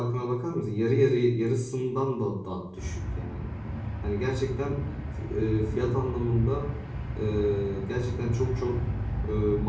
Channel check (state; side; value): identical; both; correlation 1.00